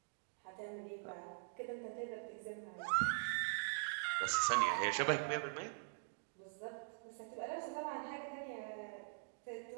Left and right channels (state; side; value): silent; left; digital silence